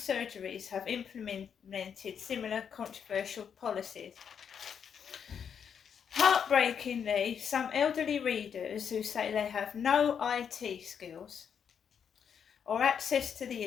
have implemented similar controversial policies. Heartbreakingly, some elderly readers who say they have no IT skills or access to the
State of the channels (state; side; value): quieter; right; 7.5 dB